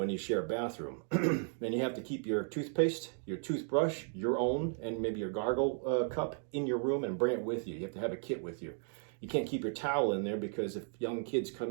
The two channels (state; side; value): silent; left; 54 dB below the other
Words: you share a bathroom. And you have to keep your toothpaste, your toothbrush, your own, and maybe your gargle cup in your room and bring it with you. You have to have a kit with you. You can't keep your towel in there, because if young kids